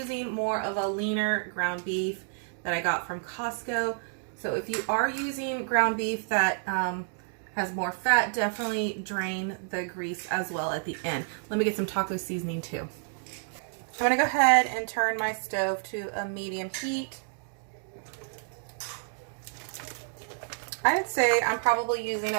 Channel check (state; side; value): silent; left; digital silence